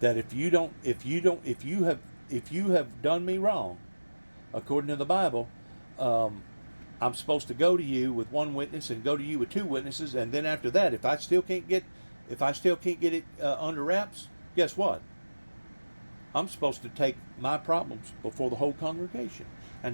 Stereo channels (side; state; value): both; inverted; correlation -1.00